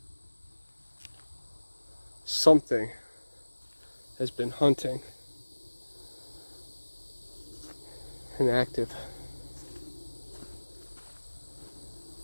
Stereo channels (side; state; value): both; inverted; correlation -1.00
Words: Something has been hunting and active.